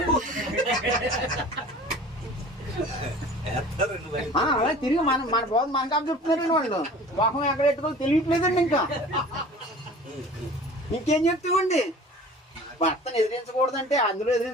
అలా తిరిగి మన బోధ మనకు చెప్తున్నారండి. వాళ్ళు మొహం ఎక్కడ పెట్టుకోవాలి తెలియట్లేదండి. ఇంకా ఇంకేం చెప్తామండి? భర్తను ఎదిరించకూడదంటే అందులో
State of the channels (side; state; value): both; normal; correlation 0.43